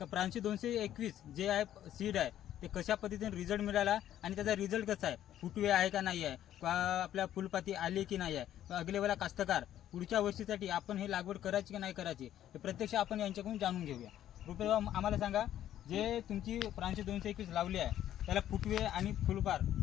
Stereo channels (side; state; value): right; quieter; 11.7 dB